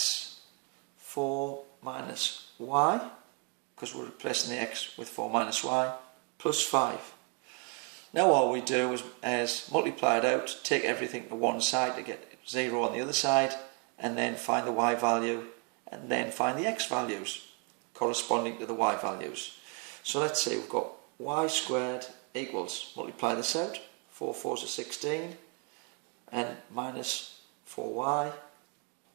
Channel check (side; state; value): left; quieter; 35.4 dB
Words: 4 minus y, because we're replacing the x with 4 minus y, plus 5. Now all we do is multiply it out, take everything to one side to get 0 on the other side, and then find the y value, and then find the x values corresponding to the y values. So let's say we've got y squared equals, multiply this out, 4 4s are 16, and minus 4y